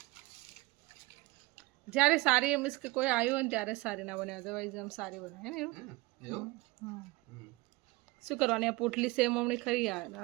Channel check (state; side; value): quieter; left; 22.6 dB